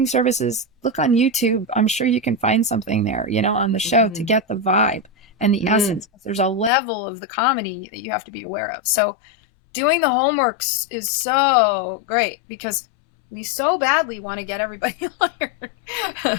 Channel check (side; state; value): right; drops out; at 6.7 s